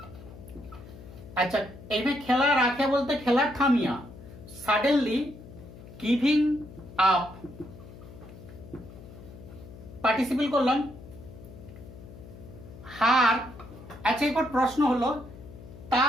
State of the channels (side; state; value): left; noise; hum, 17 dB below the sound